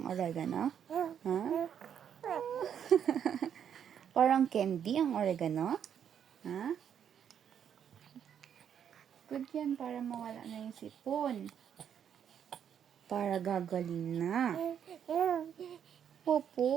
oregano? Ha? Parang candy ang oregano? Ha? Good yan para mawala na yung sipon. Para gagaling na.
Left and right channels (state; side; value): quieter; left; 8.7 dB